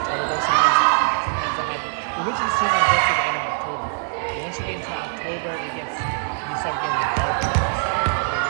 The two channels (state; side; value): silent; left; 64 dB below the other